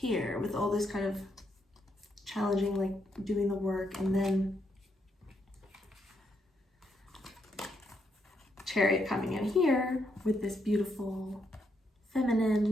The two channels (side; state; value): both; normal; correlation 0.78